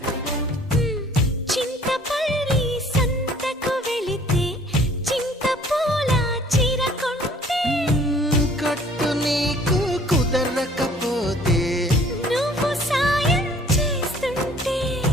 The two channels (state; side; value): normal; both; correlation 0.55